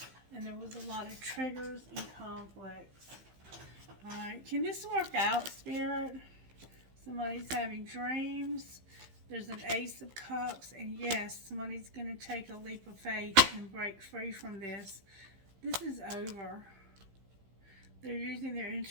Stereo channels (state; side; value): late; left; 15 ms